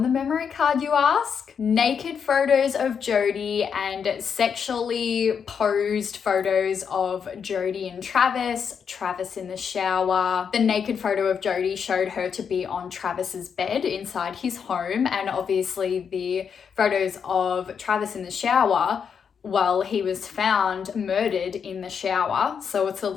the memory card, you ask? Naked photos of Jodi and sexually posed photos of Jodi and Travis, Travis in the shower. The naked photo of Jodi showed her to be on Travis's bed inside his home, and obviously the photos of Travis in the shower, well, he was found murdered in the shower, so it's a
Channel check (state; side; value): quieter; right; 6.9 dB